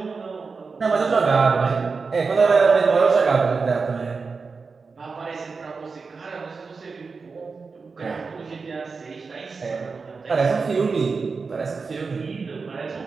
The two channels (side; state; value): left; quieter; 4.7 dB